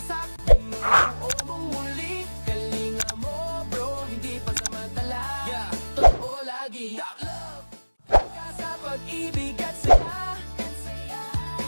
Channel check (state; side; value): inverted; both; correlation -1.00